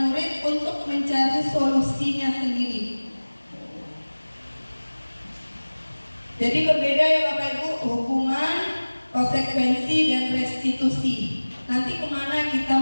murid untuk mencari solusinya sendiri. Jadi berbeda ya Bapak Ibu, hukuman, konsekuensi, dan restitusi. Nanti kemana kita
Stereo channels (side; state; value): both; inverted; correlation -1.00